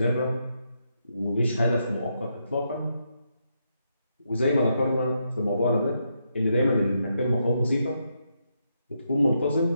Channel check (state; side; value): inverted; both; correlation -0.81